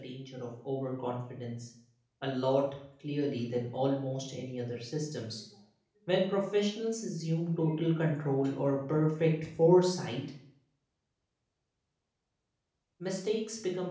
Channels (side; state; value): both; identical; correlation 1.00